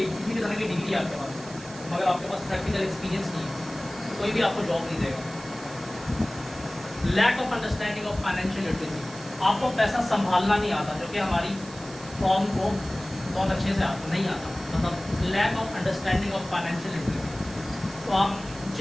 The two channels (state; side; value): noise; right; hiss, 17 dB below the sound